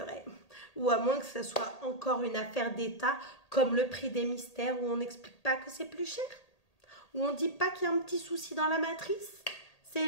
Ou à moins que ce soit encore une affaire d'État, comme le prix des mystères, où on n'explique pas que c'est plus cher. Où on dit pas qu'il y a un petit souci dans la matrice. C'est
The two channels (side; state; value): right; late; 1.8 ms